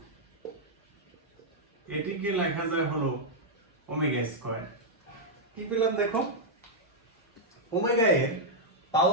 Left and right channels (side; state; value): both; normal; correlation -0.05